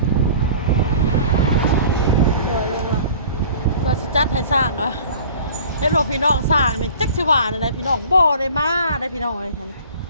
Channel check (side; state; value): both; inverted; correlation -0.45